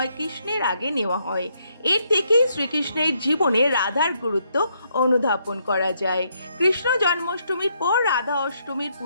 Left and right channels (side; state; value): both; inverted; correlation -0.74